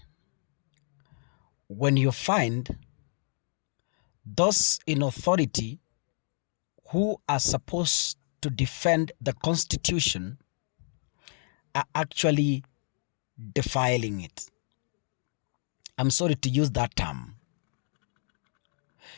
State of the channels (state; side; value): silent; right; digital silence